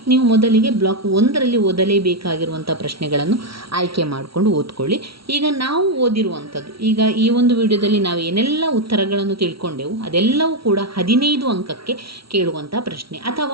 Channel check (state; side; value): late; left; 0.75 ms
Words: ನೀವು ಮೊದಲಿಗೆ ಬ್ಲಾಕ್ 1ರಲ್ಲಿ ಓದಲೇಬೇಕಾಗಿರುವಂಥ ಪ್ರಶ್ನೆಗಳನ್ನು ಆಯ್ಕೆ ಮಾಡಿಕೊಂಡು ಓದ್ಕೊಳ್ಳಿ. ಈಗ ನಾವು ಓದಿರುವಂಥದ್ದು, ಈಗ ಈ ಒಂದು ವಿಡಿಯೋದಲ್ಲಿ ನಾವು ಏನೆಲ್ಲ ಉತ್ತರಗಳನ್ನು ತಿಳ್ಕೊಂಡೆವು ಅದೆಲ್ಲವೂ ಕೂಡ 15 ಅಂಕಕ್ಕೆ ಕೇಳುವಂಥ ಪ್ರಶ್ನೆ,